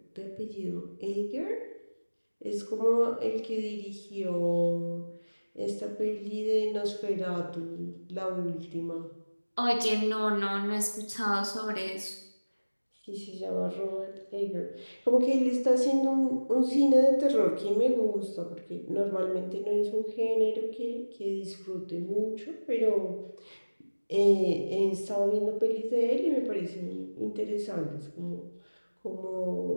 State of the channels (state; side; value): inverted; both; correlation -1.00